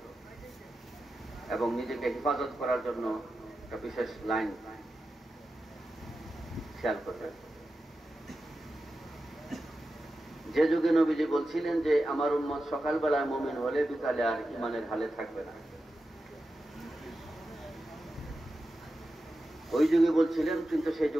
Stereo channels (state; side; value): normal; both; correlation 0.92